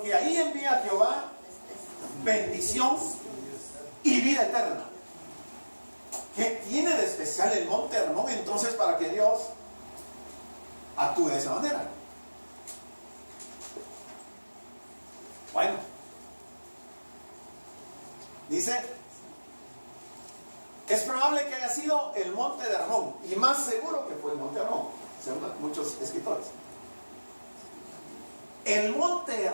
ahí envía Jehová bendición y vida eterna. ¿Qué tiene de especial el monte Hermón entonces para que Dios actúe de esa manera? Bueno, dice, es probable que haya sido el monte de Hermón, y más seguro que fue el monte Hermón, según muchos escritores. El monte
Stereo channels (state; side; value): inverted; both; correlation -1.00